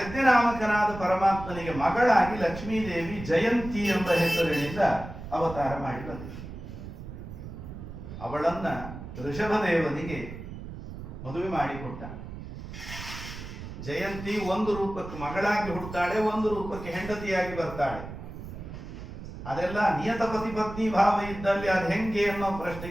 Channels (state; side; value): noise; right; rumble, 11 dB below the sound